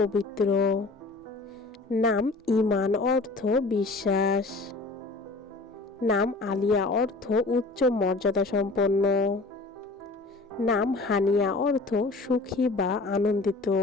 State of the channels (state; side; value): quieter; right; 3.3 dB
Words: নাম ঈমান, অর্থ বিশ্বাস। নাম আলিয়া, অর্থ উচ্চ মর্যাদা সম্পন্ন। নাম হানিয়া, অর্থ সুখী বা আনন্দিত।